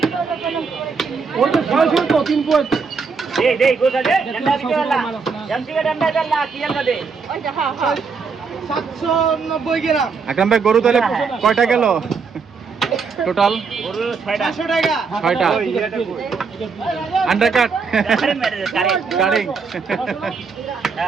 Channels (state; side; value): quieter; left; 5.2 dB